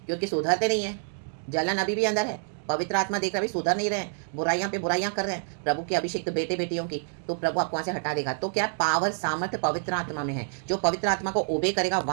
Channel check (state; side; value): silent; left; digital silence